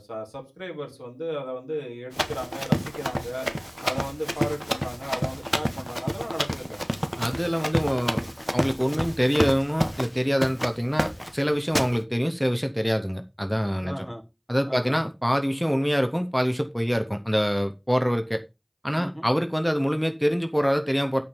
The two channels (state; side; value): identical; both; correlation 1.00